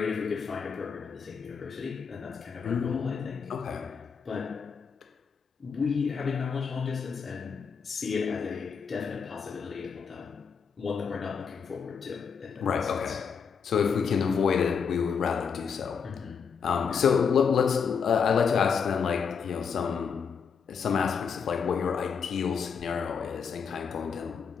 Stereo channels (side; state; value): right; quieter; 6.3 dB